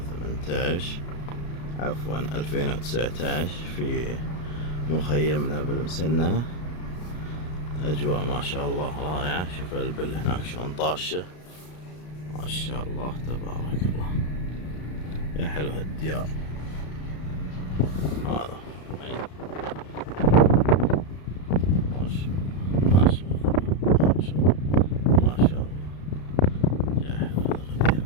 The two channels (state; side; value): late; right; 33 ms